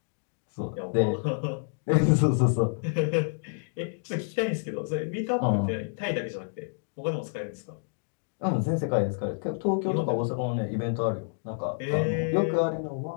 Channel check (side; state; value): right; silent; digital silence